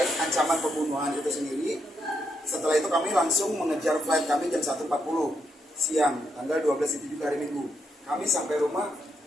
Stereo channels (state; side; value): normal; both; correlation 0.79